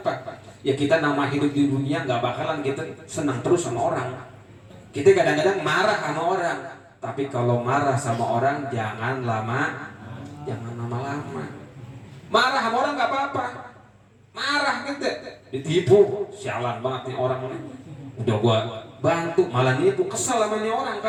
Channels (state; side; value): identical; both; correlation 1.00